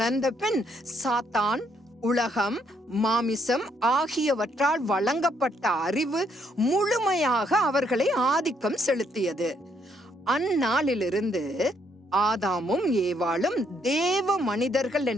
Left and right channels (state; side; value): normal; both; correlation 0.72